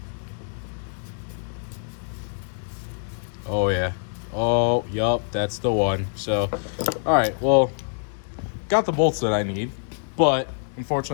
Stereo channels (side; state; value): right; silent; digital silence